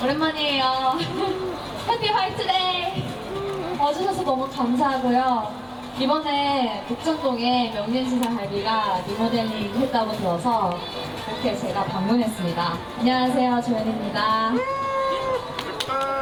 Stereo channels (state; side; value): identical; both; correlation 1.00